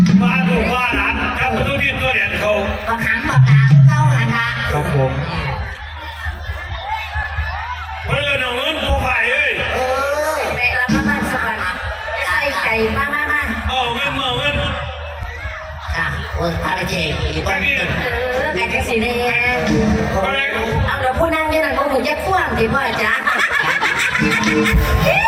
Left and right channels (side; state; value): both; identical; correlation 1.00